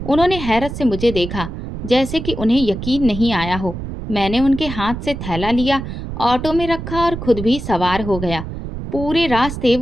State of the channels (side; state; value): right; noise; rumble, 8 dB below the sound